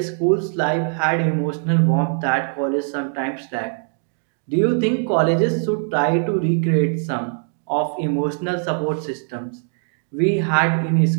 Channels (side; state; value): left; silent; 60 dB below the other